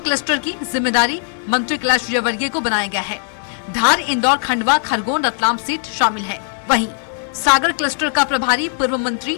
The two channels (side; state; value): right; silent; digital silence